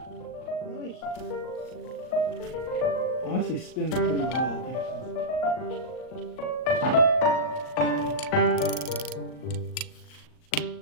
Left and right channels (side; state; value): right; late; 39 ms